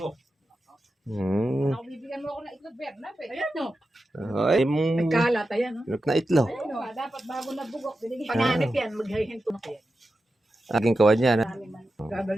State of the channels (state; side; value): normal; both; correlation 0.91